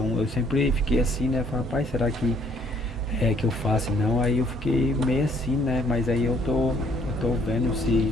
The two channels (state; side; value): normal; both; correlation 0.63